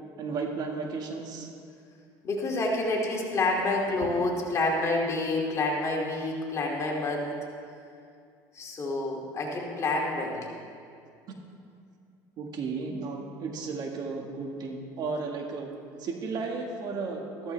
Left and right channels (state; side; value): normal; both; correlation 0.47